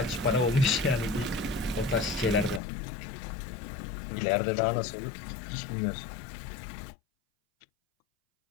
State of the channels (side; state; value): right; drops out; at 2.6 s